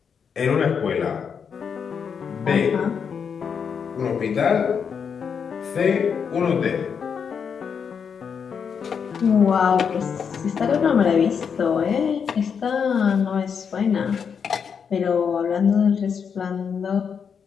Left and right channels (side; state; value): right; quieter; 6.7 dB